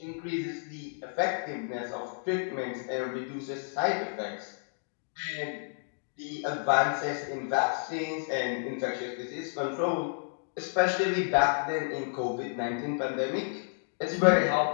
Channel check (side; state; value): right; silent; digital silence